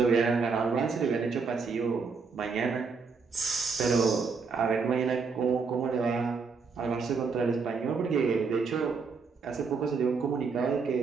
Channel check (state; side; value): quieter; left; 5.0 dB